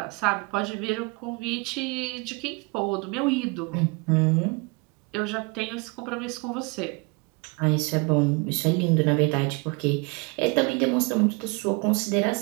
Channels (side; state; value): left; quieter; 29.5 dB